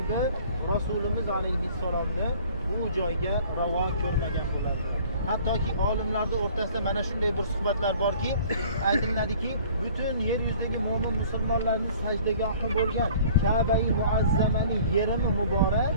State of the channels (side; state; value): both; inverted; correlation -0.50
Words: Rasulimiz alayhissalomni bu joyga ravo ko'rmagan bo'lardi. Hattoki olimlarning o'rtasida mana shunday bir suhbatlar borki, aytiladiki, butun yer yuzidagi mo'min musulmonlarning sajdagohi bo'lgan Ka'ba-i Muazzamaning yerimi muborak